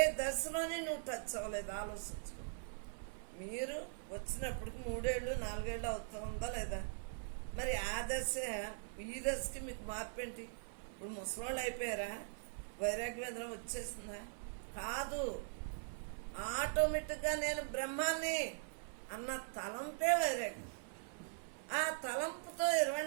దశలోనే నువ్వు టచ్ అవ్వలేదు. ఆలోచించుకో. మీరు వచ్చినప్పటికి 3 ఏళ్ళు 4 ఏళ్ళు అవుతుందా లేదా? మరి ఆ దశ ఈ దశకి మీకు మార్పు ఏంటి? ఇప్పుడు ముసలోళ్ళు అయిపోయారా? వైరాగ్యం వచ్చేసిందా? కాదు. ఆటోమేటిక్గా నేను బ్రహ్మాన్ని అన్న తలంపే వైరాగ్యం. ఆ తలంపుతో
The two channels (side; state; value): left; silent; 50 dB below the other